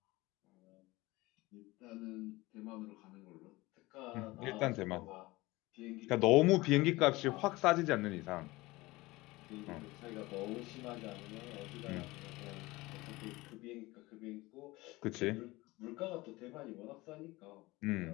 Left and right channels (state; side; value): quieter; right; 20.8 dB